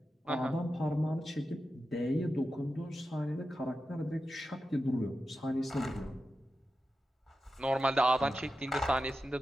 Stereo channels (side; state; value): both; normal; correlation 0.91